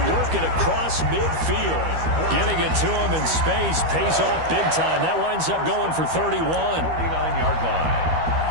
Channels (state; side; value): late; left; 12 ms